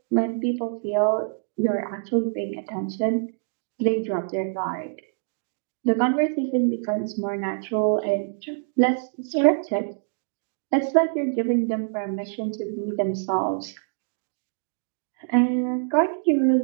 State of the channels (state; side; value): silent; left; digital silence